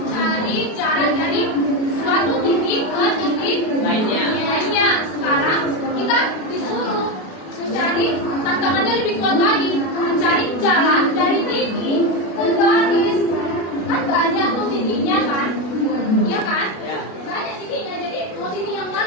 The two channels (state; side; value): late; right; 32 ms